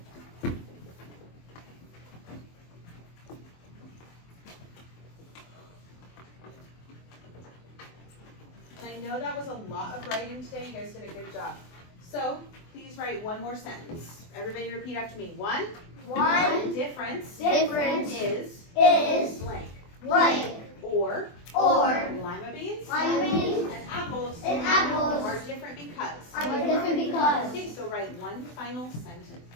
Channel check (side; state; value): right; late; 24 ms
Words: And I know that was a lot of writing today. You guys did a good job. So please write one more sentence. Everybody repeat after me. One difference is blank. Or lima beans and apples are different because. Okay, so write one final sentence.